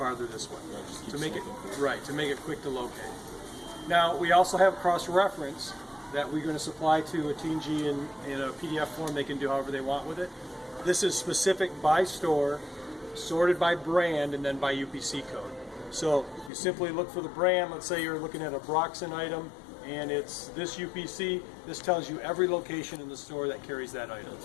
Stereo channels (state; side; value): drops out; right; at 16.5 s